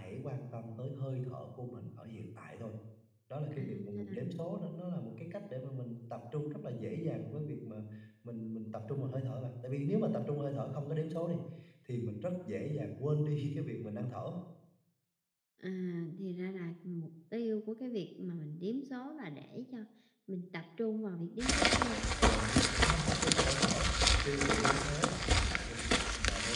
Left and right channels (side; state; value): both; identical; correlation 1.00